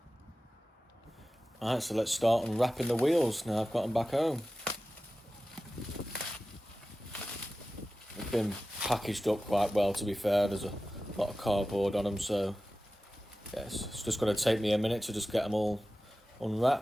Alright, so let's start unwrapping the wheels now I've got them back home. They've been packaged up quite well, to be fair. There's a lot of cardboard on them, so yes, it's just going to take me a minute to just get them all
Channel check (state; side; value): normal; both; correlation 0.95